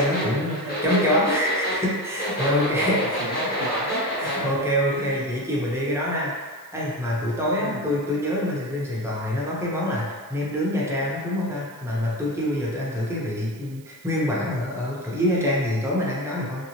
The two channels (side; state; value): right; noise; hiss, 25 dB below the sound